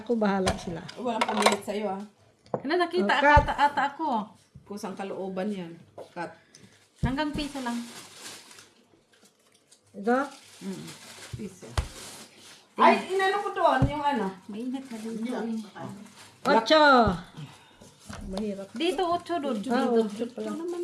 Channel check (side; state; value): both; identical; correlation 1.00